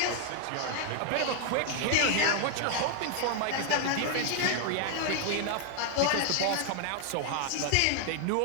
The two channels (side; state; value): both; different; correlation 0.00